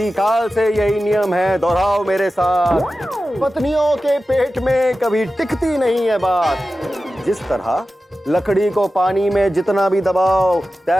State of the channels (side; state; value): both; normal; correlation 0.94